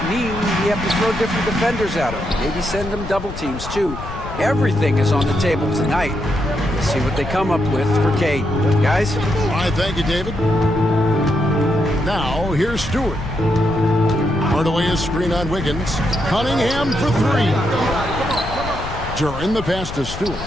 mean we have to throw different defenders at him. Maybe send them double teams, too. Everything is on the table tonight. Let's see what they come up with for Cade. Guys? All right, thank you, David. Now, here's Stewart. Hardaway is screen on Wiggins. Cunningham for 3. Duran the pass to Stewart.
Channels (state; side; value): noise; left; rumble, 9 dB below the sound